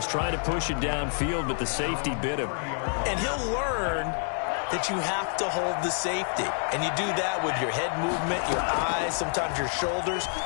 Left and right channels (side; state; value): right; silent; 56 dB below the other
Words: trying to push it downfield, but the safety bit him. And he'll learn that you have to hold the safety. And you do that with your head movement, your eyes, sometimes your shoulders.